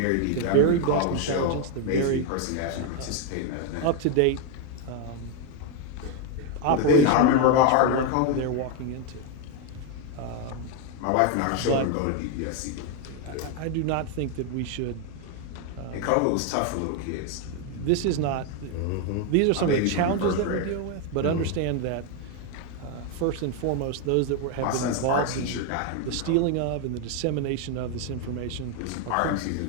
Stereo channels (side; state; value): both; different; correlation 0.01